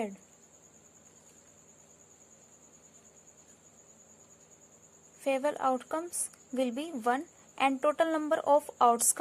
Favorable outcomes will be 1 and total number of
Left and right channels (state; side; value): identical; both; correlation 1.00